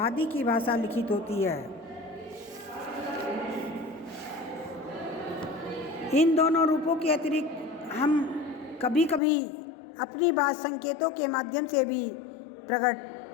की भाषा लिखित होती है। इन दोनों रूपों के अतिरिक्त हम कभी कभी अपनी बात संकेतों के माध्यम से भी प्रकट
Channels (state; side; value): drops out; right; at 9.2 s